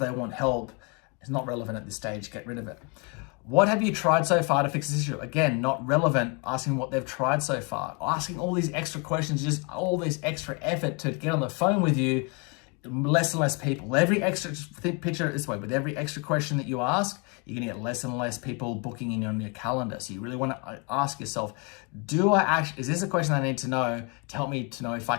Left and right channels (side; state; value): right; quieter; 32.8 dB